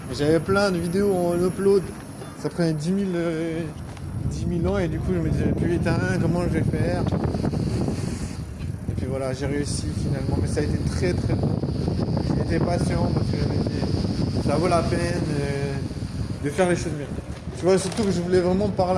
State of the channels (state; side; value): identical; both; correlation 1.00